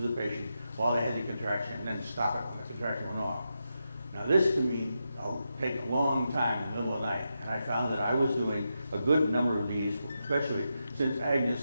the patient while they had the contraction, and then stop it when the contraction went off. Now this can mean take a long time in the middle of the night, and I found that I was doing a good number of these, especially since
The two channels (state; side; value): inverted; both; correlation -0.87